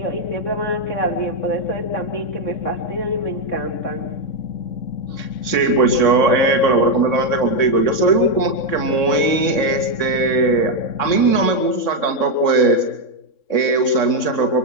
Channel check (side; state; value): right; late; 3.6 ms